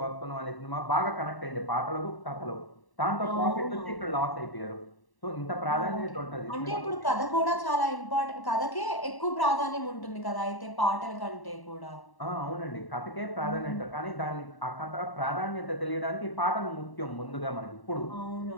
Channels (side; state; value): right; late; 1.1 ms